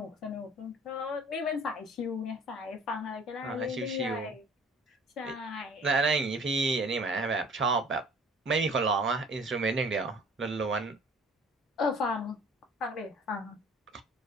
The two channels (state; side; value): normal; both; correlation 0.50